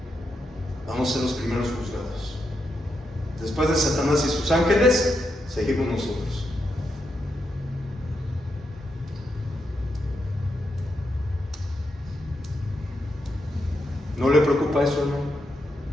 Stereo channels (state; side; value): normal; both; correlation 0.84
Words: Vamos a ser los primeros juzgados. Después de Satanás y sus ángeles, seguimos nosotros. ¿No le preocupa eso, hermano?